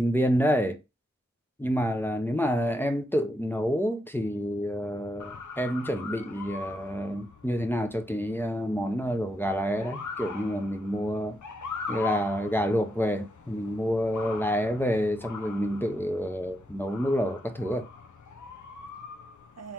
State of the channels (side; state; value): both; normal; correlation 0.82